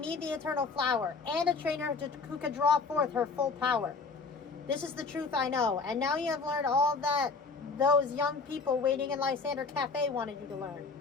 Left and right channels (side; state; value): right; quieter; 4.4 dB